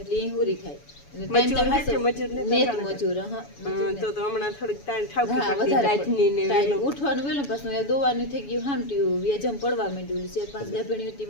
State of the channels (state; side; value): late; right; 7.0 ms